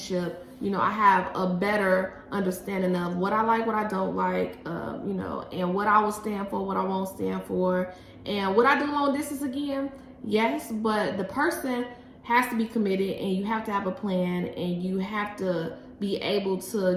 I have a better understanding of what I like, what I don't like, and what I will stand for, what I won't stand for. And would I do long distance again? Yes, but the person has to be committed, and you have to have a plan, and you have to be able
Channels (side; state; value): both; identical; correlation 1.00